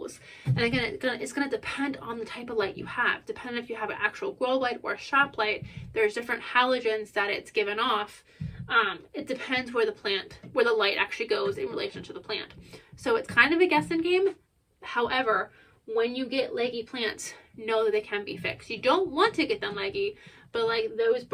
And again, it's going to depend on the type of light you have. Depending if you have an actual grow light or a shop light, there's different halogens that it's given off. It depends where the light actually goes in relation to the plant. So it's kind of a guessing game. However, when you get leggy plants, know that they can be fixed. You don't want to get them leggy, but like those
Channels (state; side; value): identical; both; correlation 1.00